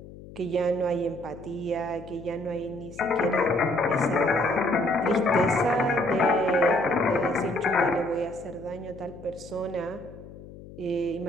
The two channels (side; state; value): left; noise; hum, 17 dB below the sound